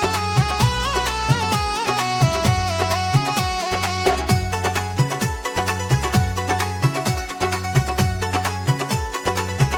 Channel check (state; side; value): identical; both; correlation 1.00